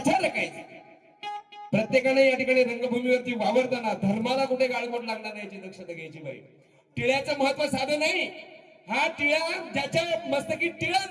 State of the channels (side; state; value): both; identical; correlation 1.00